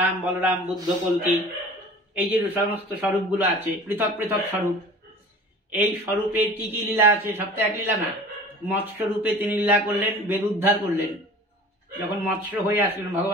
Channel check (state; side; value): normal; both; correlation 0.43